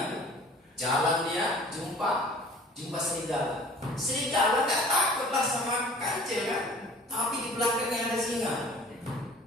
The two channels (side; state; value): both; normal; correlation 0.49